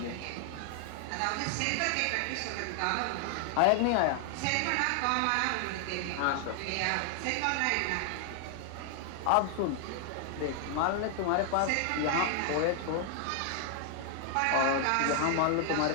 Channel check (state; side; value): different; both; correlation 0.00